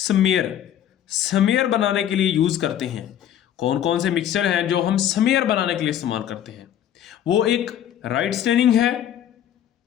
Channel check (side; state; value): right; quieter; 10.6 dB